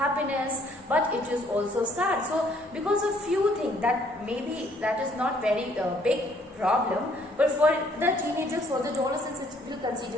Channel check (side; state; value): both; normal; correlation 0.64